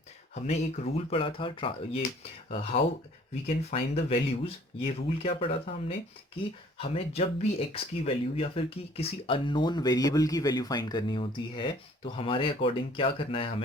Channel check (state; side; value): normal; both; correlation 0.55